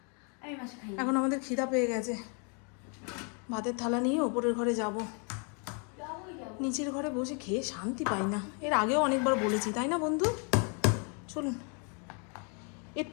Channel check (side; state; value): right; quieter; 37.9 dB